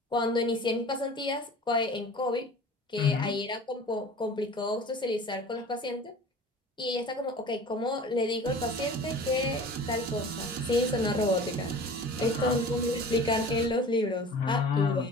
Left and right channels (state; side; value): normal; both; correlation 0.41